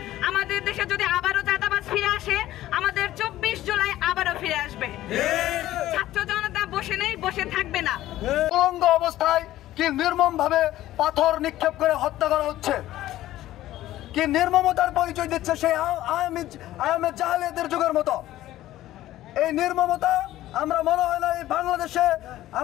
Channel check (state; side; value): quieter; right; 14.6 dB